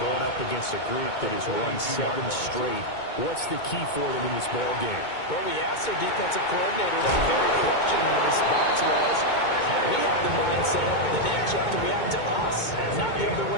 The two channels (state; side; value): late; right; 2.2 ms